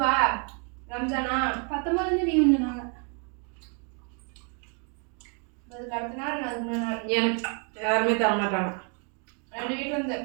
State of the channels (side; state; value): left; quieter; 38.8 dB